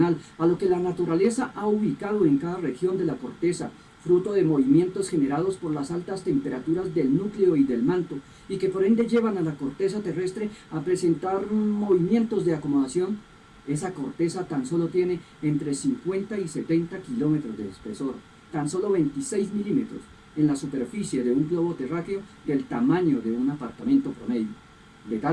a lo que la naturaleza ha ubicado en cada región de la corteza, fruto de movimientos generados por las altas temperaturas del núcleo y del manto, y que por ende llevan a la corteza terrestre a presentar movimientos de acomodación. Esa corteza tan solo tiene entre 50 y 70 kilómetros de espesor, tan solo 26 milímetros en la superficie de un globo terráqueo del tamaño de un apartamento promedio, de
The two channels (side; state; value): both; identical; correlation 1.00